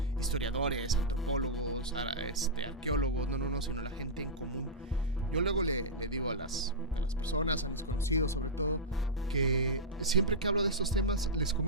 historiadores, antropólogos, arqueólogos, no, sino la gente en común. Yo luego le digo a las personas, a los conocidos sobre todo, que siempre que hablo de estos temas les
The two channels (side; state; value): both; normal; correlation -0.11